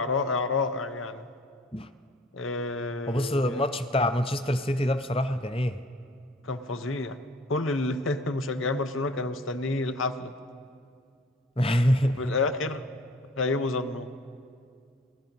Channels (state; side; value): normal; both; correlation 0.50